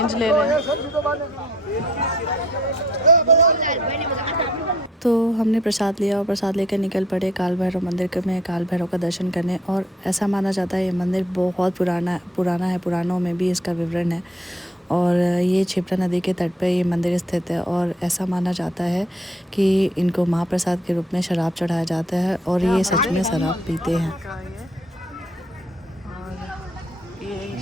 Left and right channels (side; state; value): both; normal; correlation 0.61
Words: ले रहे हैं। तो हमने प्रसाद लिया और प्रसाद लेकर निकल पड़े काल भैरव मंदिर में काल भैरव का दर्शन करने। और ऐसा माना जाता है ये मंदिर बहुत पुराना है, पुराणों में भी इसका विवरण है। और ये क्षिप्रा नदी के तट पर ये मंदिर स्थित है। और ऐसा माना जाता है कि इनको महाप्रसाद के रूप में शराब चढ़ाया जाता है और ये सच में शराब पीते हैं। और ये